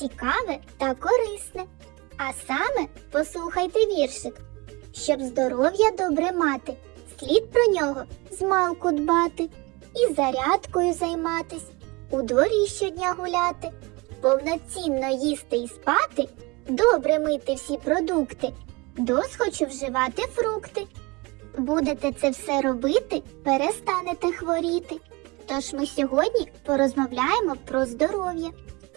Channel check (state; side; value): quieter; left; 25.7 dB